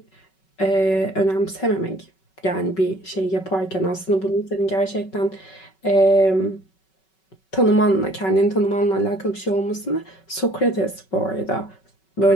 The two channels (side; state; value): right; late; 5.3 ms